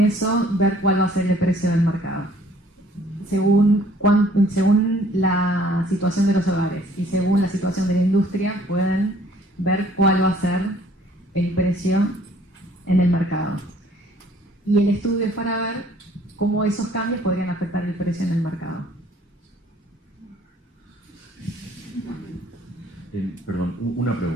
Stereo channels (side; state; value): both; normal; correlation 0.58